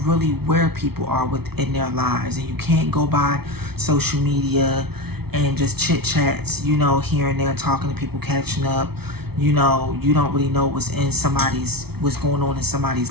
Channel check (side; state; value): left; late; 0.96 ms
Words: really where people are within their lives, and you can't go by social media and just chit chats, here and there, talking to people, catching up. You don't really know what's going on in